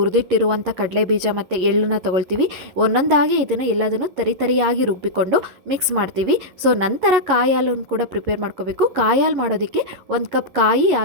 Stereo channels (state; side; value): late; left; 11 ms